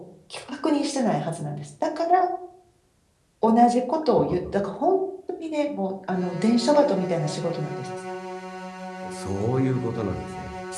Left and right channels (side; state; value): both; identical; correlation 1.00